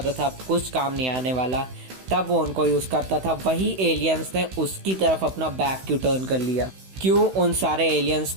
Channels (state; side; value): late; left; 16 ms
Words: था कुछ काम नहीं आने वाला तब वो उनको यूज़ करता था। वही एलियंस ने उसकी तरफ अपना बैक क्यों टर्न कर लिया? क्यों उन सारे एलियंस